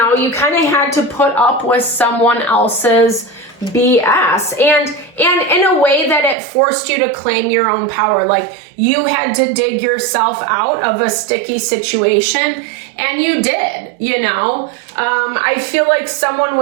you kind of had to put up with someone else's BS, and in a way that it forced you to claim your own power. Like, you had to dig yourself out of a sticky situation, and you did, you know. I feel like someone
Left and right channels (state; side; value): drops out; left; at 6.4 s